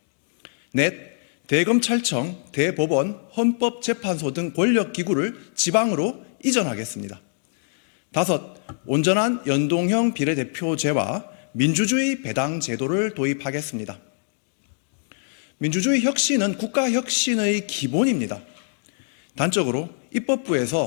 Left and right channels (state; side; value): silent; right; digital silence